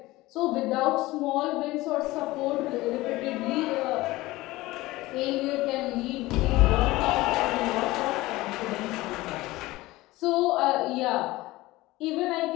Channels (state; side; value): quieter; right; 19.0 dB